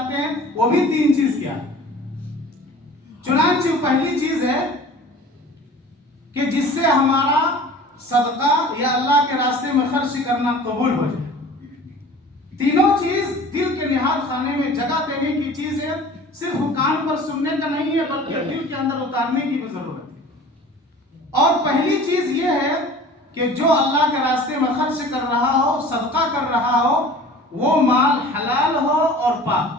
ہیں، وہ بھی 3 چیز کیا ہے۔ چنانچہ پہلی چیز ہے کہ جس سے ہمارا صدقہ یا اللہ کے راستے میں خرچ کرنا قبول ہو جائے۔ تینوں چیز دل کے نہاد خانے میں جگہ دینے کی چیز ہے، صرف کان پر سننے کا نہیں ہے بلکہ دل کے اندر اتارنے کی بھی ضرورت ہے۔ اور پہلی چیز یہ ہے کہ جو اللہ کے راستے میں خرچ کر رہا ہو، صدقہ کر رہا ہو، وہ مال حلال ہو اور پاک۔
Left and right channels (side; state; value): both; normal; correlation 0.44